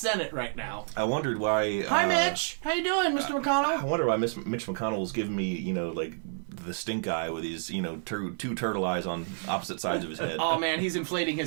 right now. I wondered why... Hi, Mitch! How you doing, Mr. McConnell? I wonder why Mitch McConnell's giving me, like, the stink eye with these, two turtle eyes on opposite sides of his head. Oh, man, he's inflating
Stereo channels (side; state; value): left; silent; 58 dB below the other